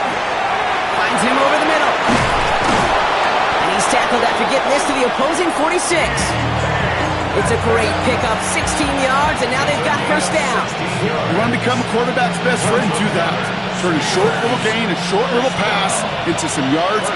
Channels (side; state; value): both; identical; correlation 1.00